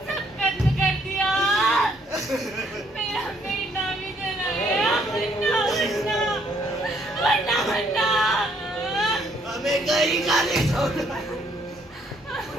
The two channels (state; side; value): normal; both; correlation 0.68